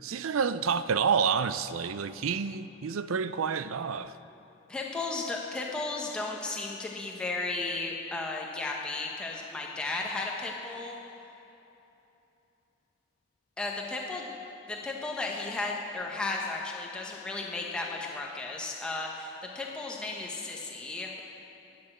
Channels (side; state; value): both; normal; correlation 0.03